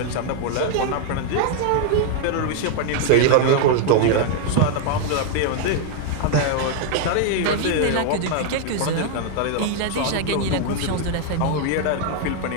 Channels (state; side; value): different; both; correlation 0.00